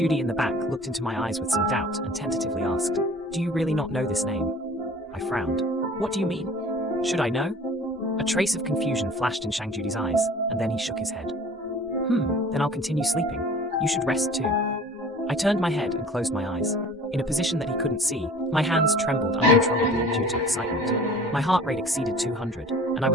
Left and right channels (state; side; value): normal; both; correlation 0.46